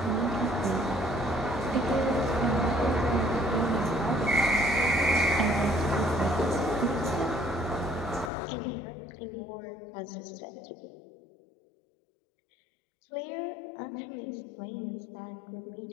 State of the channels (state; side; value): drops out; right; at 8.3 s